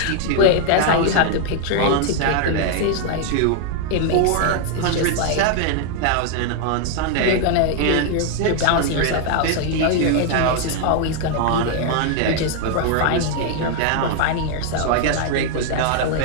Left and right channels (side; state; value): both; different; correlation 0.00